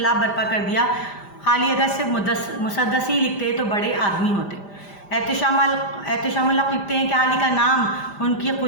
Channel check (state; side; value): late; right; 5.0 ms